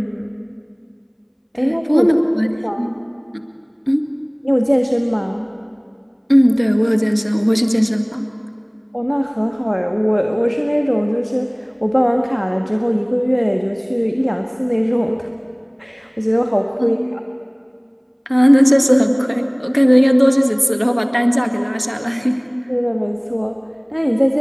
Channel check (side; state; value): both; identical; correlation 1.00